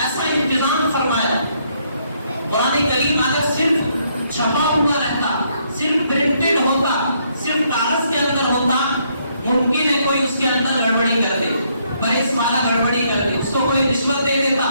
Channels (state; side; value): inverted; both; correlation -0.72